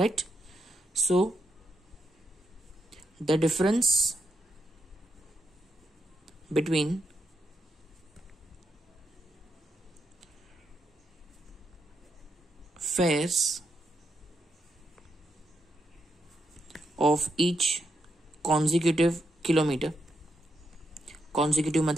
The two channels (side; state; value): both; normal; correlation 0.82